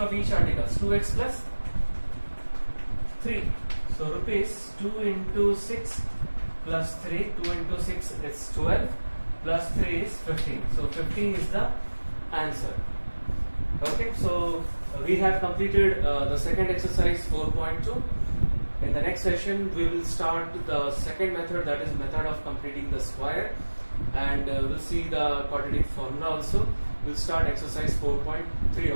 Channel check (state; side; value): inverted; both; correlation -1.00